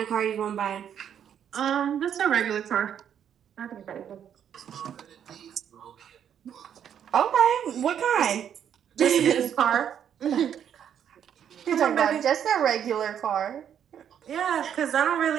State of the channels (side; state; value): left; quieter; 9.0 dB